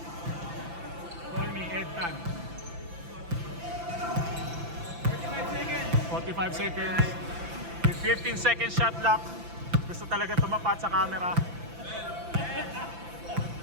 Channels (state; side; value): late; left; 5.9 ms